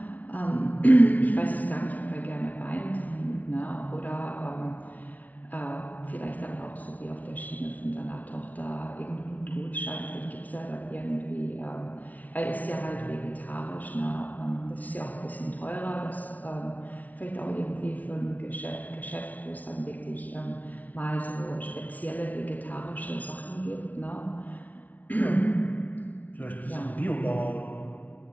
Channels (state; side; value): late; right; 0.074 ms